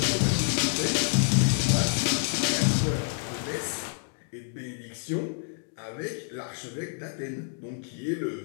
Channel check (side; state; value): right; silent; digital silence